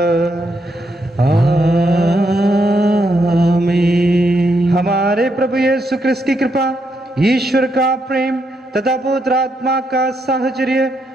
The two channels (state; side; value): normal; both; correlation 0.79